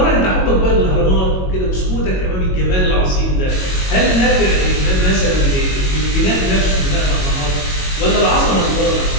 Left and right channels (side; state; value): right; late; 22 ms